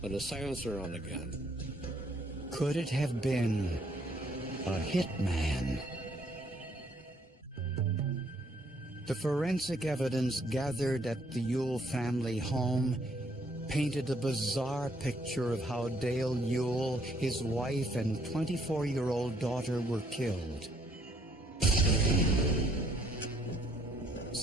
with a silencer on the gun? Could it have been a hitman. The forensic evidence gathered at the Ewell family home painted a bizarre picture of how Dale Ewell, his wife, and 24-year-old daughter were killed.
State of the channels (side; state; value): both; normal; correlation 0.67